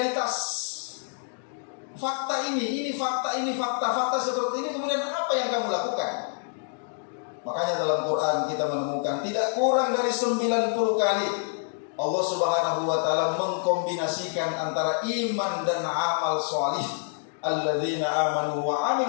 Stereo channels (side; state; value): right; silent; digital silence